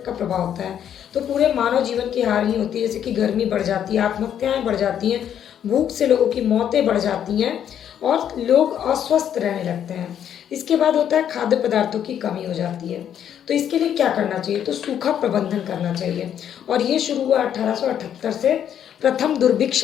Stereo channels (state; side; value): quieter; right; 9.5 dB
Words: का प्रभाव होता है। तो पूरे मानव जीवन की हानि होती है, जैसे कि गर्मी बढ़ जाती है, आत्महत्याएं बढ़ जाती हैं, भूख से लोगों की मौतें बढ़ जाती हैं, और लोग अस्वस्थ रहने लगते हैं। इसके बाद होता है खाद्य पदार्थों की कमी हो जाती है। तो इसके लिए क्या करना चाहिए, तो सूखा प्रबंधन करना चाहिए। और ये शुरू हुआ 1878 से, प्रथम दुर्भिक्ष